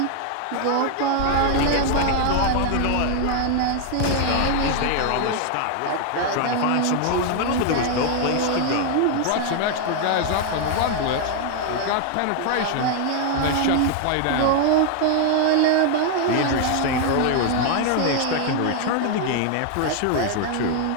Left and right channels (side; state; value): both; different; correlation 0.00